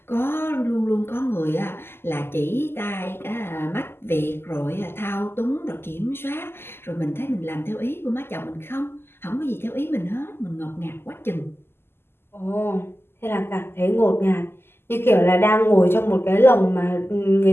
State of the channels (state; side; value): late; right; 0.12 ms